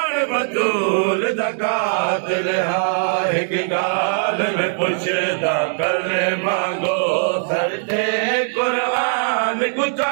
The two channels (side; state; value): left; silent; digital silence